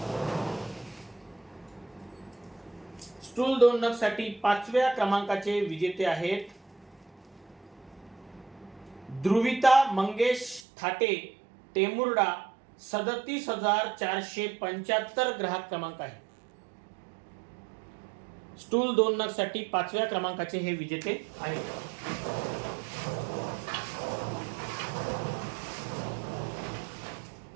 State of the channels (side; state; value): left; drops out; at 10.6 s